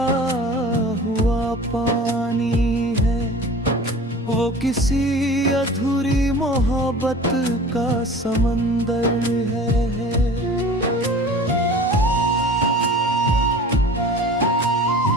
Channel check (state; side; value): normal; both; correlation 0.41